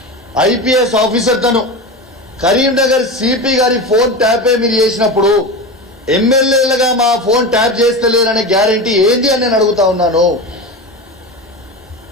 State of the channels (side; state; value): both; normal; correlation 0.25